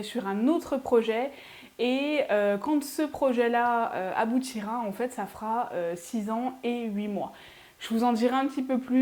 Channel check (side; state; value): both; identical; correlation 1.00